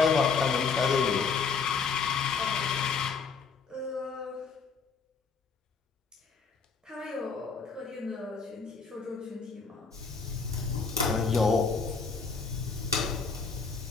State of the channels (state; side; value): quieter; right; 5.2 dB